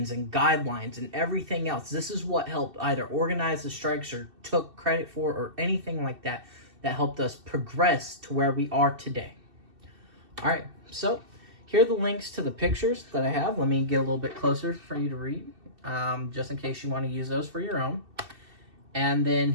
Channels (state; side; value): late; left; 2.7 ms